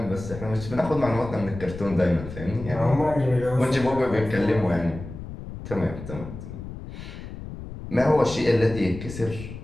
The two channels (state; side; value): noise; left; rumble, 11 dB below the sound